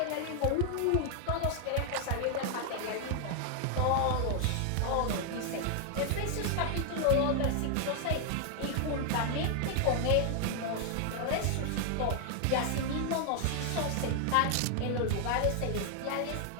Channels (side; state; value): both; different; correlation 0.00